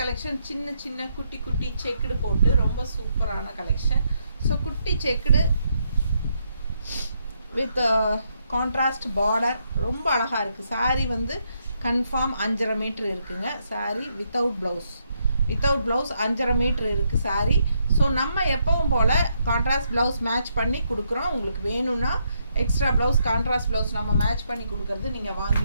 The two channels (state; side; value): inverted; both; correlation -0.77